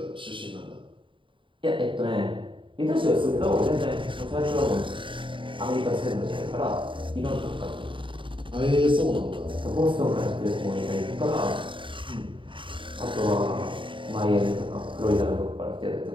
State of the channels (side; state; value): left; late; 0.24 ms